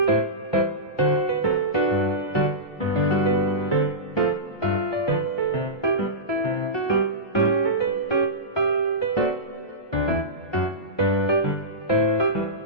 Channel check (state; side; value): late; right; 1.2 ms